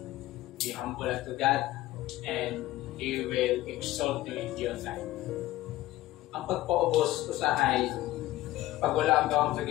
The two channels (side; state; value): right; quieter; 16.1 dB